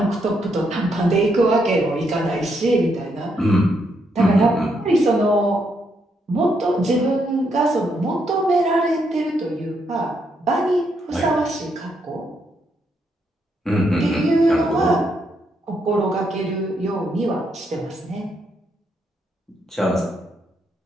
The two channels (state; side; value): normal; both; correlation 0.77